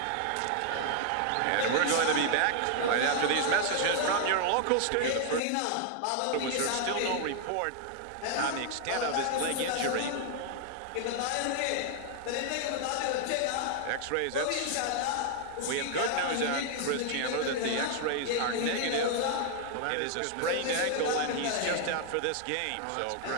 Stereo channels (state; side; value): different; both; correlation 0.00